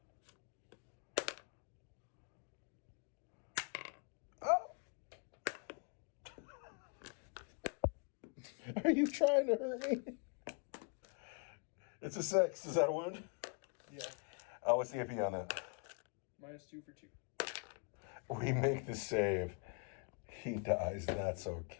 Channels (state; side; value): quieter; right; 35.0 dB